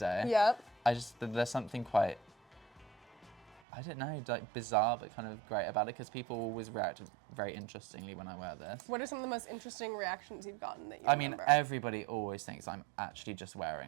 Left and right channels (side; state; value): left; drops out; at 3.6 s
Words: There's something quite, I don't know, like bizarre but kind of great about it because people always react very interestingly when I wear this. What are some of the most interesting reactions you've gotten that you remember? I mean, everybody always thinks I'm actually just